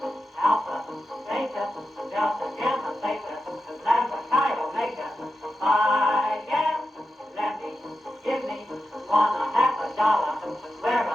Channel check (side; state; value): both; normal; correlation 0.90